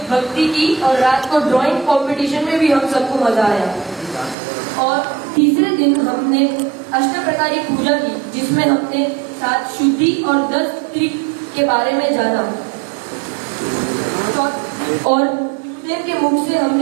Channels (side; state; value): left; drops out; at 4.4 s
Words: भक्ति की और रात को ड्राइंग कंपटीशन में भी हम सबको मजा आया। और तीसरे दिन हमने अष्टप्रकारी पूजा की, जिसमें हमने 7 शुद्धि और 10 त्रिक के बारे में जाना। और गुरुदेव के मुख से